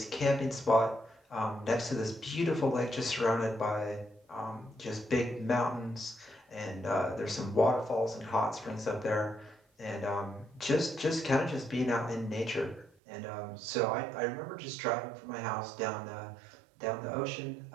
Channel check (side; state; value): left; drops out; at 12.9 s